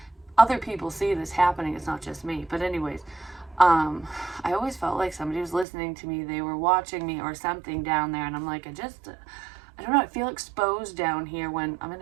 other people see this happening. It's not just me. But anyways, I always felt like somebody was listening to me. They were watching me or something down there. And I'm like, I don't know. I feel exposed down here when I'm in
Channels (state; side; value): drops out; left; at 5.7 s